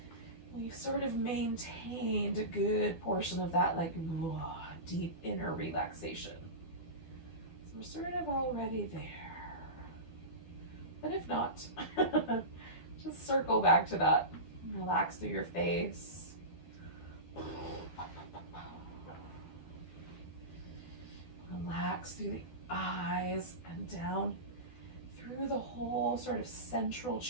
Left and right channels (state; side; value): late; right; 12 ms